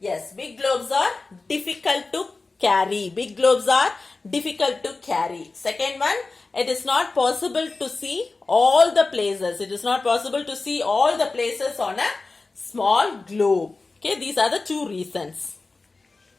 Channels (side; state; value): right; quieter; 3.7 dB